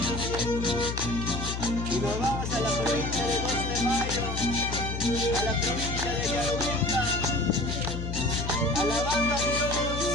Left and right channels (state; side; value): noise; left; hum, 4 dB below the sound